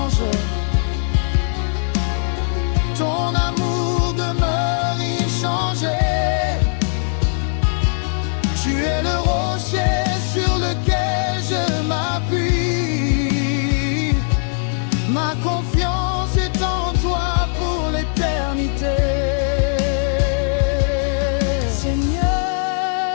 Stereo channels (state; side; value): silent; right; 66 dB below the other